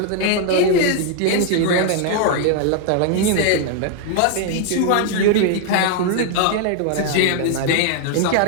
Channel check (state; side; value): different; both; correlation 0.00